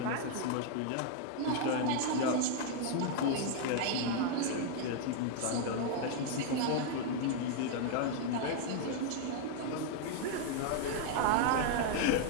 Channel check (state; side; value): different; both; correlation 0.00